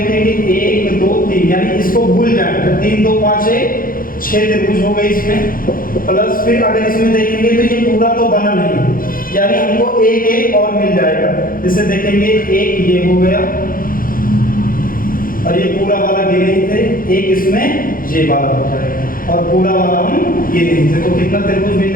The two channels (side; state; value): right; late; 0.41 ms